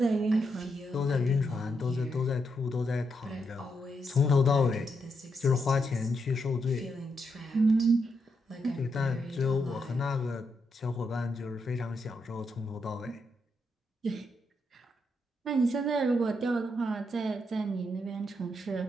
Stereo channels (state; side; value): normal; both; correlation 0.81